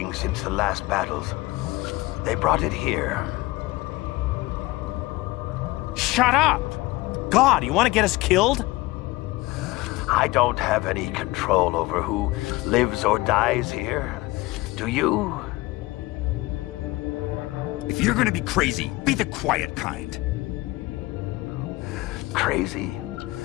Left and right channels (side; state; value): right; quieter; 20.3 dB